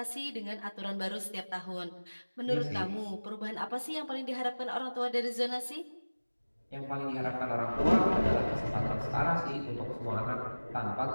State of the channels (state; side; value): inverted; both; correlation -1.00